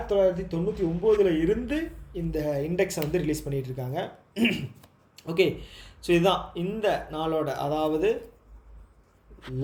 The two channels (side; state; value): both; identical; correlation 1.00